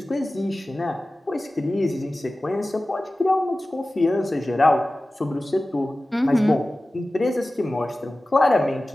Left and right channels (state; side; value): normal; both; correlation 0.96